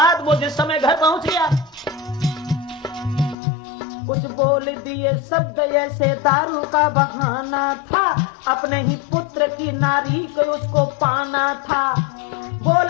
वो जिस समय घर पहुंच गया, कुछ बोल दिए शब्द ऐसे, दारू का बहाना था, अपने ही पुत्र की नारी को उसको पाना था।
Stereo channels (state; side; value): drops out; right; at 3.4 s